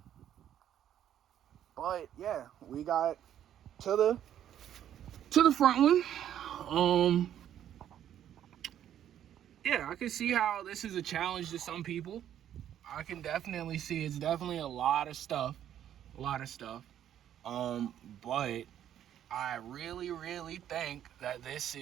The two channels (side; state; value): left; quieter; 10.6 dB